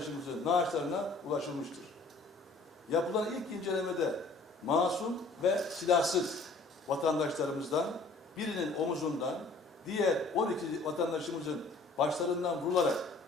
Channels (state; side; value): quieter; right; 3.5 dB